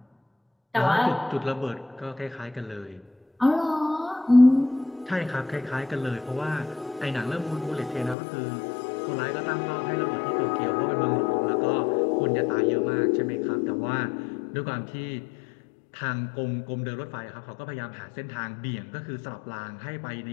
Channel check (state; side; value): drops out; right; at 8.2 s